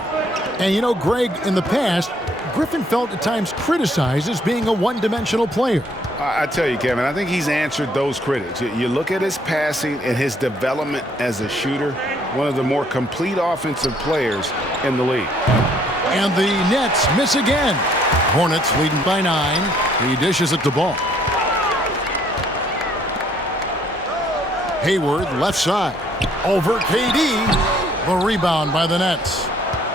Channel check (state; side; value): normal; both; correlation 0.64